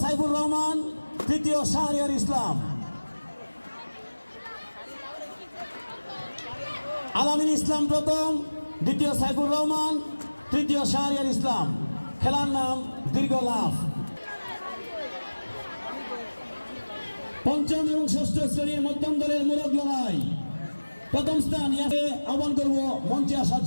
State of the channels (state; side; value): inverted; both; correlation -1.00